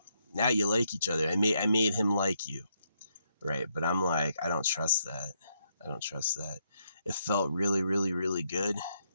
now you like each other. I made him like you, right? But I'm like, I don't trust that. It felt really, really, really good.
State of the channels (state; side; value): inverted; both; correlation -0.77